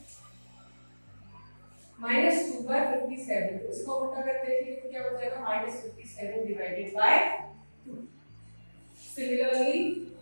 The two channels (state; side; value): inverted; both; correlation -1.00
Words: -2/57, तो इसको उल्टा करके लिखेंगे तो क्या हो जाएगा, -57 डिवाइडेड बाय 2। सिमिलरली